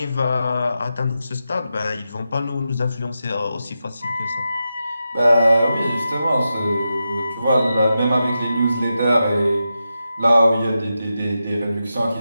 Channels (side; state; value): both; inverted; correlation -0.89